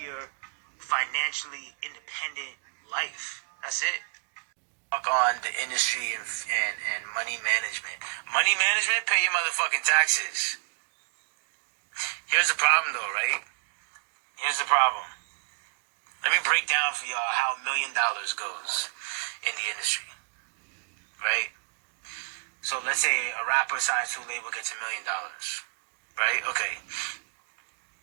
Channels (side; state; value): left; silent; 57 dB below the other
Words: financially independent life. That's it. On the industry and money management. Money management, pay your motherfucking taxes. Here's the problem though, right? Here's the problem. Let me break down for y'all how $1 million goes in the industry. Right? So let's say a rapper signs to a label, gets $1 million, right? Okay,